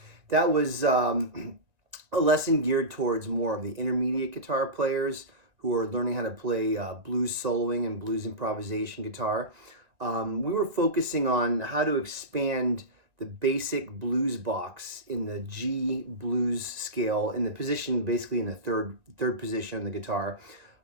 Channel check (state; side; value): late; left; 1.9 ms